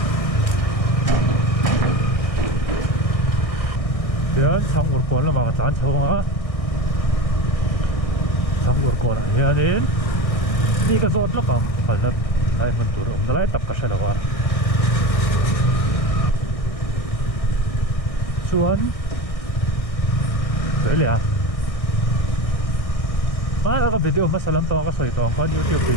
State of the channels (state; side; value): late; right; 1.6 ms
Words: giờ xong một con là mà chán không á xong một con này nên đi cái rốt lắm mà phải là đây mình tụi ông lại tập cái gì là xuống đấy là mà cái video mà xem tao có soi tao có YouTube